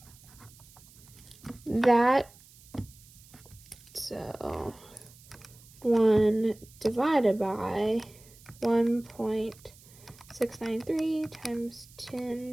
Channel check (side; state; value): right; noise; hiss, 24 dB below the sound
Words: that. So 1 divided by 1.693 times